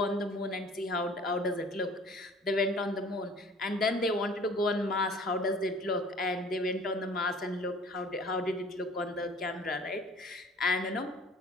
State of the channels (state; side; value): normal; both; correlation 0.49